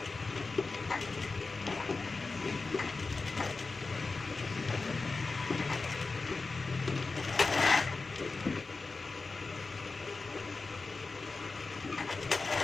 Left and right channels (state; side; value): quieter; right; 3.9 dB